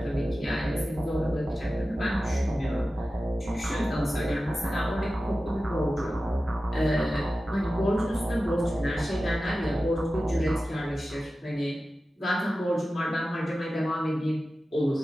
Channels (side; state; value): both; normal; correlation 0.94